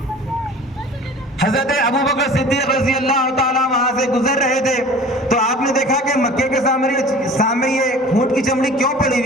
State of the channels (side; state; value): both; normal; correlation 0.43